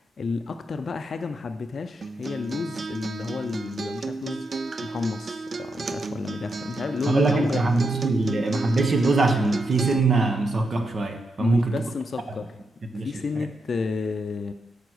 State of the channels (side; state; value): both; normal; correlation 0.83